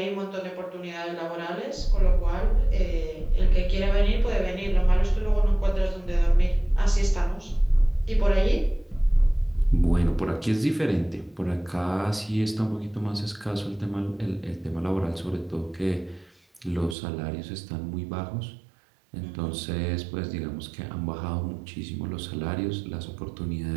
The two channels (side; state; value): left; drops out; at 16.9 s